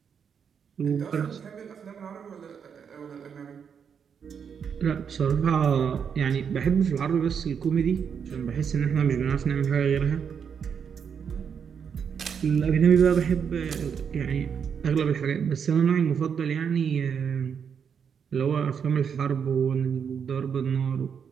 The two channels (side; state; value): left; quieter; 7.1 dB